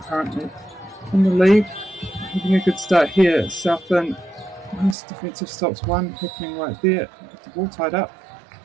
currently in the lead. Having a good start here. Southland, nice defensive stops, one happening right there. The ball tied up.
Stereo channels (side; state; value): left; drops out; at 5.0 s